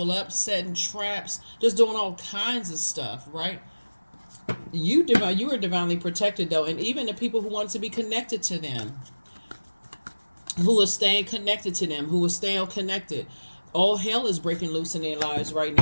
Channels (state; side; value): inverted; both; correlation -1.00